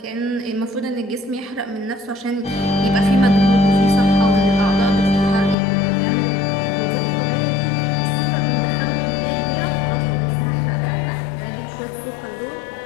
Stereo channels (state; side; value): drops out; right; at 5.6 s